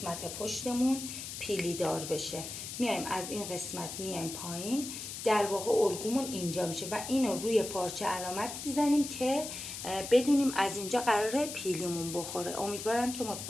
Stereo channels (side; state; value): left; noise; hiss, 8 dB below the sound